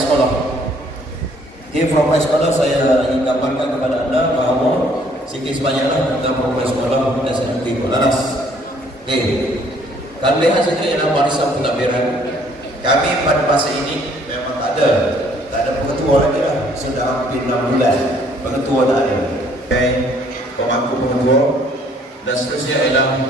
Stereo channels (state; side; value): normal; both; correlation 0.62